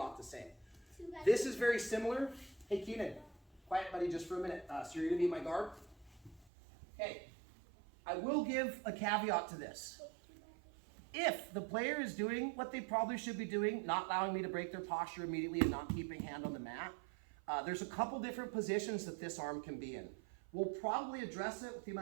the same. This is very similar. Hey, Keenan, quiet buddy just for a minute. So you're going to be my guard? Okay, I will give a caveat to this. If the player is doing what they probably should be doing, not allowing me to break their posture immediately and not keeping hand on the mat, there's a couple different positions that this arm can be in. We'll probably address it with the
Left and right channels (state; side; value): drops out; left; at 6.5 s